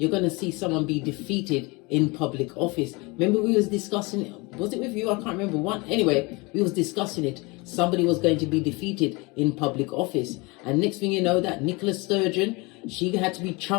going to see someone be defeated in public office. Remember we was discussing it, was it with you? I can't remember one. Anyway, we was discussing it. Somebody was going to be defeated in public office. And next thing you know, that Nicola Sturgeon, she had to be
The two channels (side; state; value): right; quieter; 26.2 dB